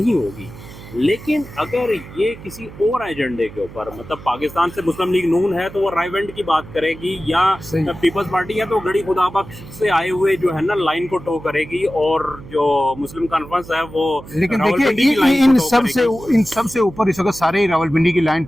होगी। लेकिन अगर ये किसी और एजेंडे के ऊपर, मतलब पाकिस्तान से मुस्लिम लीग नून है तो वो रायवेंड की बात करेगी, या सही। पीपल्स पार्टी है तो गड़ी खुदा बख्श से आए हुए जो है ना लाइन को टो करेगी, और जो मुस्लिम कॉन्फ्रेंस है वो लेकिन रावलपिंडी की देखिए लाइन इन को टो सब से करेगी। इन सब से ऊपर इस वक्त सारे ही रावलपिंडी की लाइन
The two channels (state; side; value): noise; right; hum, 16 dB below the sound